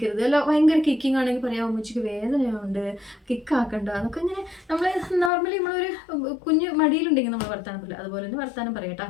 അല്ല ഭയങ്കര കിക്കിങ് ആണെങ്കിൽ പറയാം ഉമ്മച്ചിക്ക് വേദനയുണ്ട്, കിക്കാക്കണ്ട എന്നൊക്കെ ഇങ്ങനെ നമ്മൾ നോർമലി നമ്മളൊരു കുഞ്ഞ് മടിയിലുണ്ടെങ്കിൽ നമ്മൾ വർത്താനം പറയില്ല, അതുപോലെ തന്നെ വർത്താനം പറയട്ടോ.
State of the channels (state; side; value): drops out; right; at 5.3 s